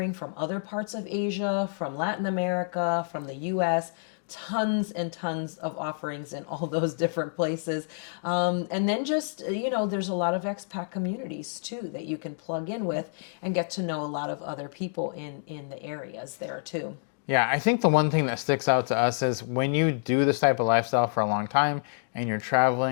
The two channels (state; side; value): silent; right; digital silence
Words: from other parts of Asia, from Latin America, from the US. Tons and tons of offerings in all those different places. And then just, there's a lot of expat communities too that you can plug in with and get to know a lot of other people in the areas there too. Yeah, I think the one thing that sticks out to us is when you do this type of lifestyle for a long time and you're